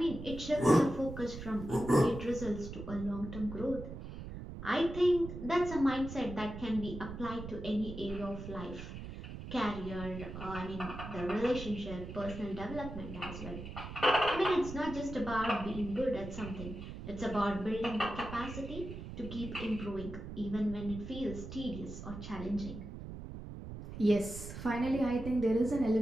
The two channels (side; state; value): right; noise; rumble, 9 dB below the sound